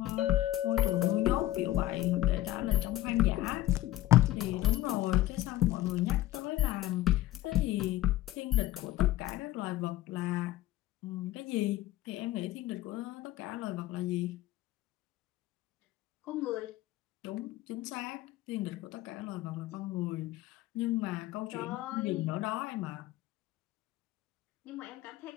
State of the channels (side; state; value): right; quieter; 15.5 dB